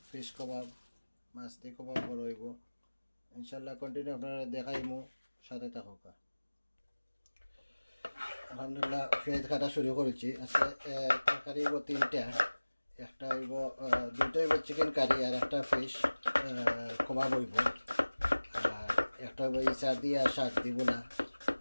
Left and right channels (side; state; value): both; inverted; correlation -1.00